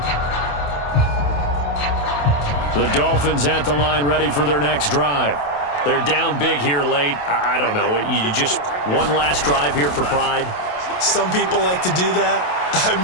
The Dolphins at the line ready for their next drive. They're down big here late. I don't know. You just one last drive here for pride? Some people like to do that. I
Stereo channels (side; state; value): right; late; 28 ms